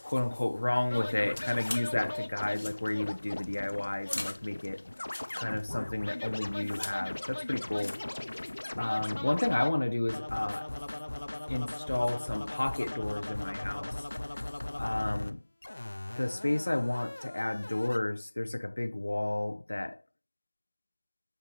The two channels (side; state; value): both; inverted; correlation -1.00